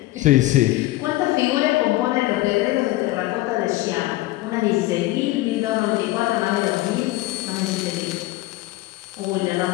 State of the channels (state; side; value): quieter; right; 18.0 dB